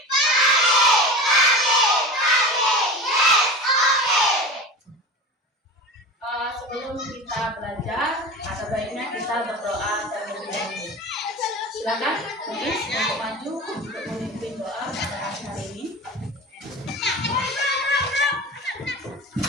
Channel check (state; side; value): normal; both; correlation 0.31